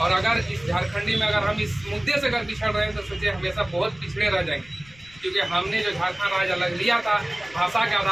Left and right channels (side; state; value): left; noise; rumble, 25 dB below the sound